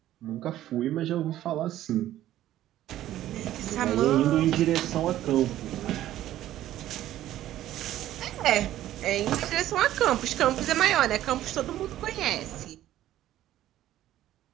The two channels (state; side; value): quieter; left; 13.4 dB